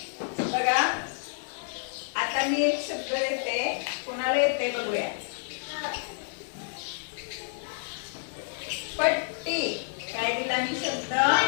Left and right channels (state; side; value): silent; right; digital silence